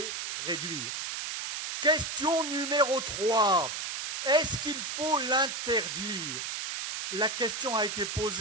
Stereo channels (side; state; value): right; noise; hiss, 4 dB below the sound